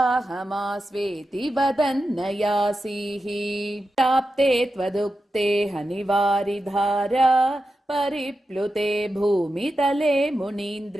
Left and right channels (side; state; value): both; normal; correlation 0.90